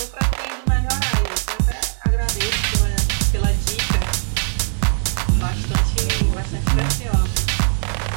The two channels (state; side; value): silent; left; 66 dB below the other